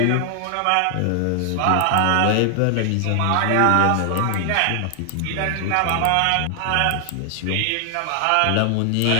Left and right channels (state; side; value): different; both; correlation 0.00